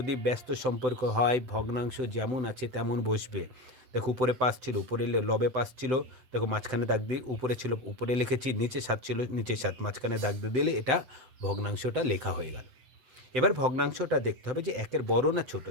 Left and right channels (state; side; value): late; left; 7.8 ms